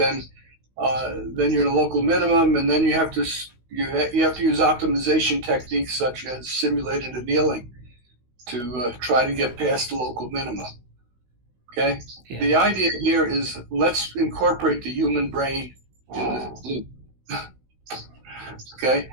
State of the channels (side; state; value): left; late; 16 ms